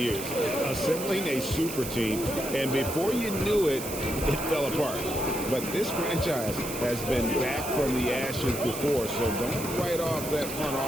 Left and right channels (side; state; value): right; noise; hiss, 8 dB below the sound